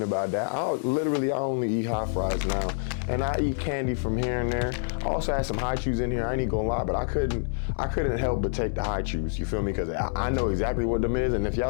about that. I only eat hot fries now. And I eat candy from here and there. I also had some Hi-Chews in here, I ain't gonna lie, but I couldn't help but take the Hi-Chews, you feel me? Because I know exactly what them is, and if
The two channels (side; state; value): right; silent; digital silence